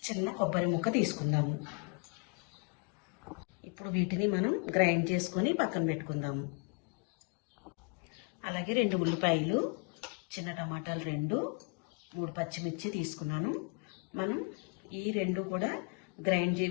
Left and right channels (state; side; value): quieter; right; 36.7 dB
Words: చిన్న కొబ్బరి ముక్క తీసుకుందాము. ఇప్పుడు వీటిని మనం గ్రైండ్ చేసుకొని పక్కన పెట్టుకుందాము. అలాగే 2 ఉల్లిపాయలు, చిన్న టమాటాలు 2, 3 పచ్చిమిర్చి తీసుకున్నాను. మనం ఈ 2 కూడా